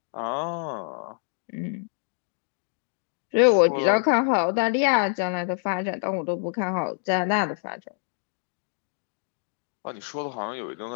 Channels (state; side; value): silent; right; 60 dB below the other